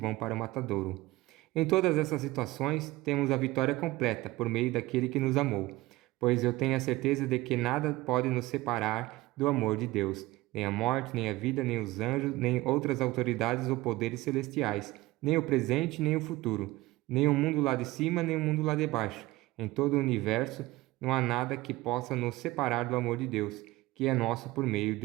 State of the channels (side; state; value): left; quieter; 18.8 dB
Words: para o matadouro. Em todas essas situações, temos a vitória completa por meio daquele que nos amou, pois eu tenho a certeza de que nada pode nos separar do amor de Deus, nem a morte, nem a vida, nem os anjos, nem outras autoridades ou poderes celestiais, nem o presente, nem o futuro, nem o mundo lá de cima, nem o mundo lá de baixo. Em todo o universo, não há nada que possa nos separar do amor de Deus, que é nosso por meio